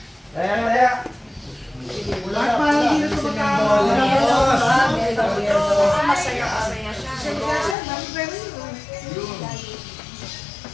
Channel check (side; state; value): right; drops out; at 7.8 s